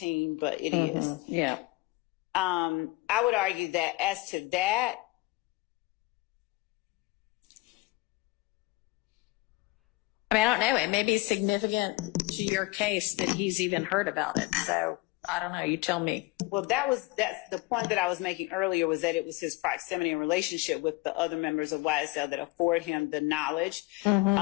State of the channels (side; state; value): right; quieter; 21.4 dB